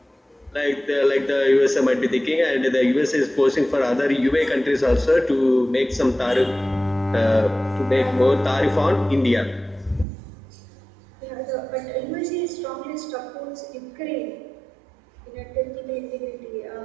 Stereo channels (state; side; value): drops out; left; at 10.1 s